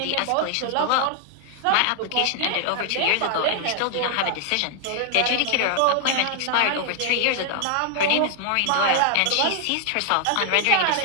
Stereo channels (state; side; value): different; both; correlation 0.00